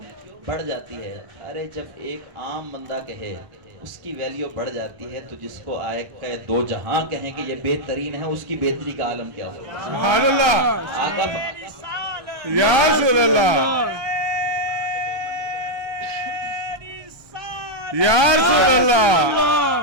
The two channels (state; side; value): late; left; 1.2 ms